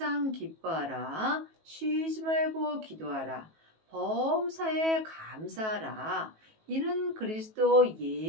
기뻐하라. 쉬지 말고 기도하라. 범사에 감사하라. 이는 그리스도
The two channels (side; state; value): left; late; 19 ms